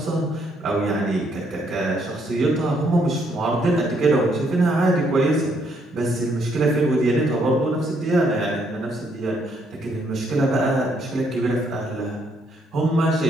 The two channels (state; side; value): normal; both; correlation 0.71